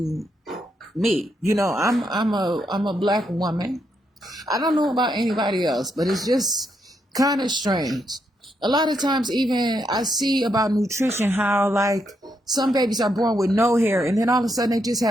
me. I'm a black woman. I don't know about anybody else, but it's just kind of strange. A lot of times even I see about nutrition how like some babies are born with no hair, and then all of a sudden they just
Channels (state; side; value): normal; both; correlation 0.79